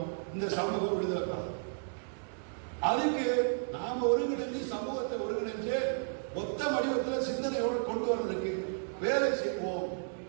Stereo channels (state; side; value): silent; left; digital silence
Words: இந்த சமூகம் விடுதலை. அதுக்கு நாம ஒருங்கிணைஞ்சு சமூகத்தை ஒருங்கிணைஞ்சு மொத்த வடிவத்தில் சிந்தனையோடு கொண்டு வர்றதுக்கு வேலை செய்வோம்.